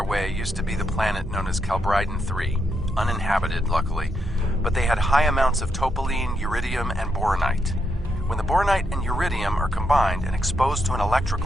way used to be the planet known as Calbryden 3, uninhabited, luckily, but they had high amounts of topaline, uridium, and boronite. When the boronite and uridium are combined and exposed to an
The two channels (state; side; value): normal; both; correlation 0.80